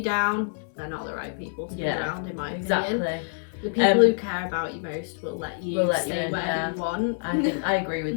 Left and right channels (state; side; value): silent; right; digital silence